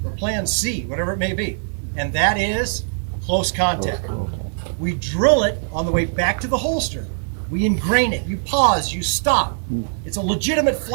or plan C, whatever it may be. And that is close contact. We drill it on the way back to the holster. We ingrain it. You pause, you stop. It's a legitimate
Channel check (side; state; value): left; silent; digital silence